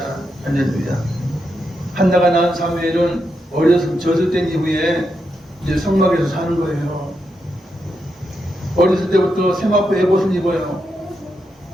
할렐루야. 한나가 낳은 사무엘은 어려서 젖을 뗀 이후에 이제 성막에서 사는 거예요. 어렸을 때부터 세마포 에봇을 입어요.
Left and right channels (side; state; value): both; normal; correlation 0.84